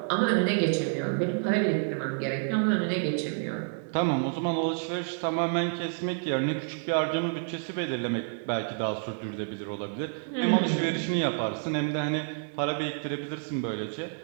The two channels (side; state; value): left; silent; 56 dB below the other